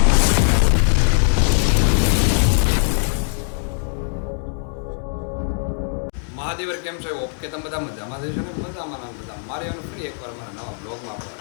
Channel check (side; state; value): right; silent; 59 dB below the other